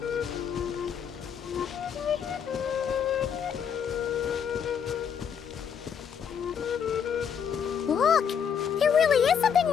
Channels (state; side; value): quieter; right; 7.6 dB